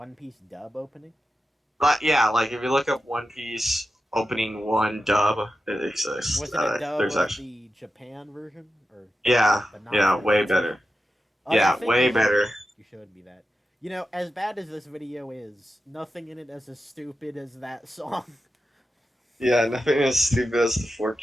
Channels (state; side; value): normal; both; correlation 0.91